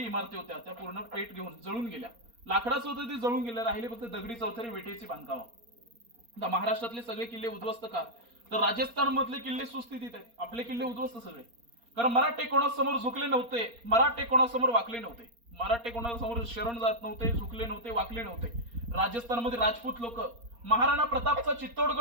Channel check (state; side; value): late; left; 4.3 ms